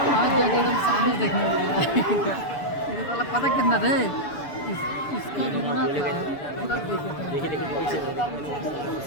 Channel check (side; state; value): right; late; 6.9 ms